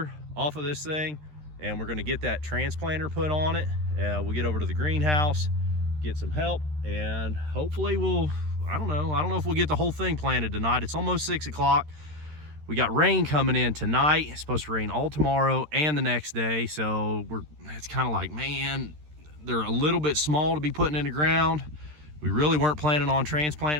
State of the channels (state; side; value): late; left; 13 ms